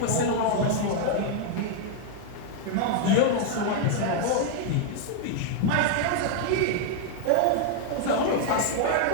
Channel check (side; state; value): both; different; correlation 0.00